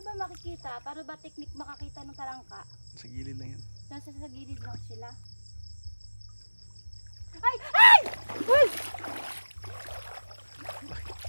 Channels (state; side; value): inverted; both; correlation -1.00